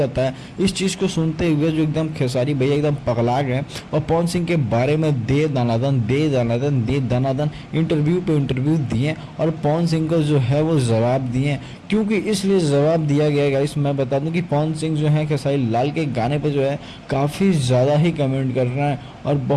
है। इस चीज़ को सुनते हुए जो एकदम खेसारी भैया एकदम पगला गए और पवन सिंह के बारे में दे दनादन इंटरव्यू पे इंटरव्यू दिए और पवन सिंह को जो है वो जवाब दिए। क्योंकि इसलिए जवाब दिया गया गाइस, मैं बता दूं कि पवन सिंह जो है खेसारी लाल के गाने पे जो है काफ़ी ज़्यादा ही कमेंट कर रहे हैं और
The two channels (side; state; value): both; identical; correlation 1.00